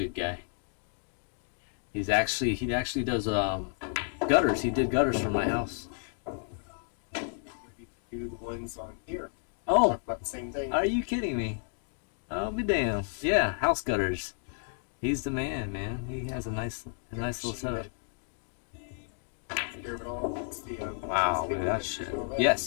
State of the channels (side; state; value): right; silent; 57 dB below the other